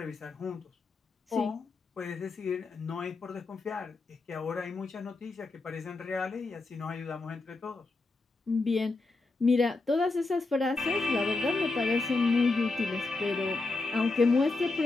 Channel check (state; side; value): quieter; right; 3.5 dB